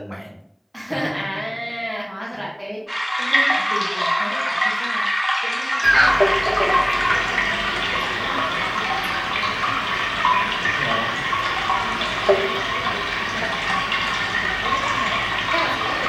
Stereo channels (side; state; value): both; identical; correlation 1.00